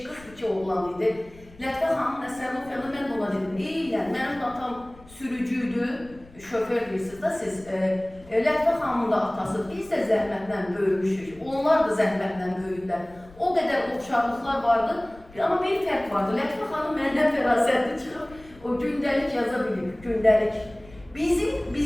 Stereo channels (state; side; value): noise; left; rumble, 23 dB below the sound